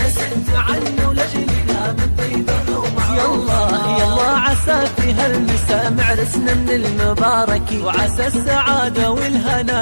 عنه لجلنا من طيبه ومعروفها. يلا عسى في هالمساء معرسنا من المبارك، وعسى السعادة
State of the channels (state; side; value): inverted; both; correlation -1.00